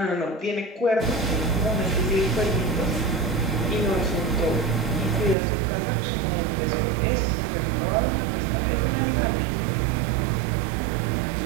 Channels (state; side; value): drops out; left; at 5.4 s